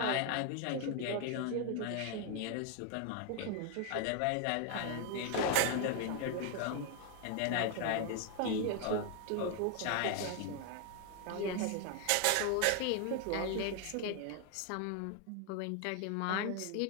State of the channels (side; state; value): both; different; correlation 0.00